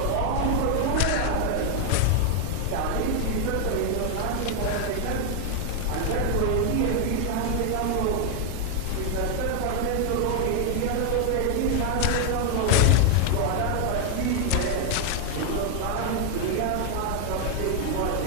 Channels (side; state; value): both; different; correlation 0.00